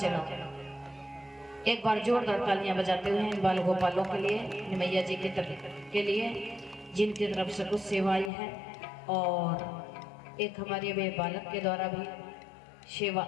एक बार जोरदार तालियां बजाते हुए इन बाल गोपालों के लिए, निमैया जी की तरफ के लिए, जिनकी तरफ से कुछ सेवाएं हैं, और एक हमारे वे बालक के द्वारा भी सेवा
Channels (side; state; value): right; drops out; at 8.3 s